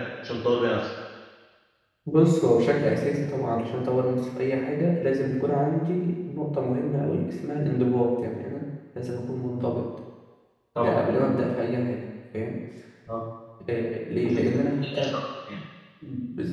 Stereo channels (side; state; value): both; identical; correlation 1.00